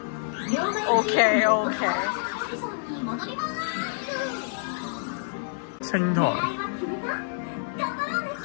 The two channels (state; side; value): silent; right; digital silence